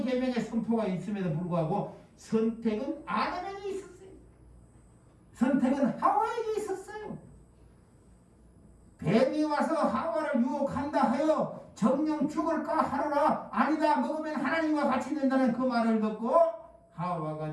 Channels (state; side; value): identical; both; correlation 1.00